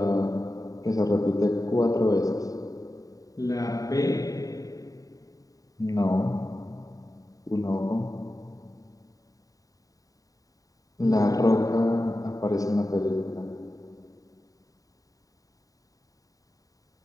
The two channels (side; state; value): right; late; 0.17 ms